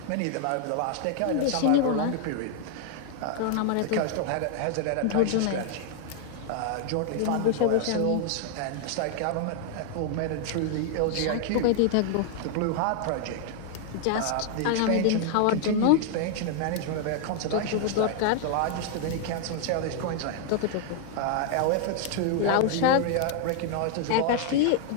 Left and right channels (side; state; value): both; different; correlation 0.00